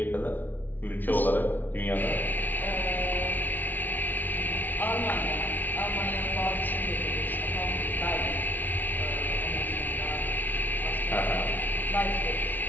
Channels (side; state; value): right; late; 0.085 ms